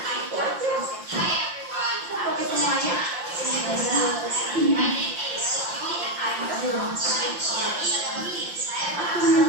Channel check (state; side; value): late; left; 5.7 ms